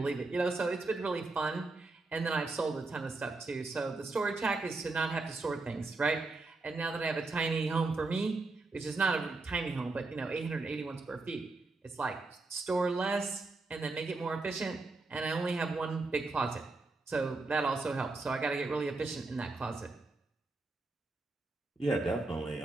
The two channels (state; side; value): quieter; left; 3.4 dB